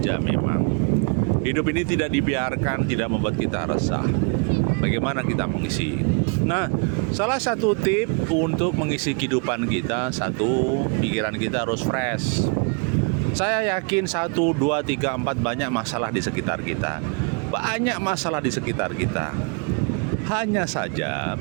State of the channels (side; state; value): left; quieter; 36.2 dB